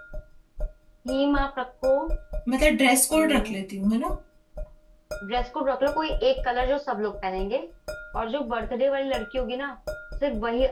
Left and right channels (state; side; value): identical; both; correlation 1.00